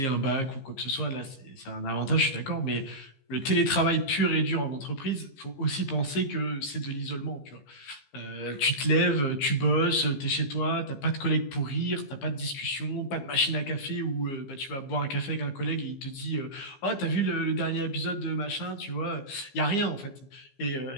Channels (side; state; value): right; late; 15 ms